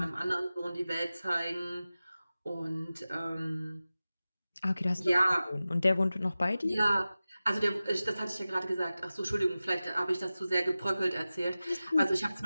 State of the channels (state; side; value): inverted; both; correlation -0.96